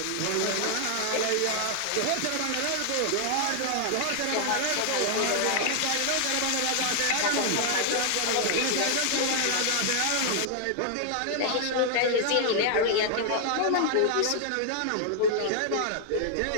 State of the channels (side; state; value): both; different; correlation 0.00